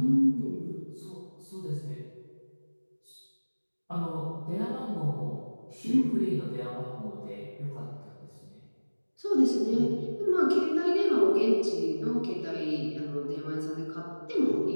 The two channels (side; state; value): both; inverted; correlation -1.00